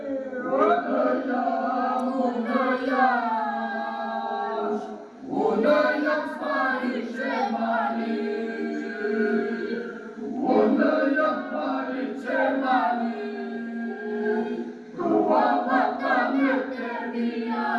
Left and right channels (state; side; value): identical; both; correlation 1.00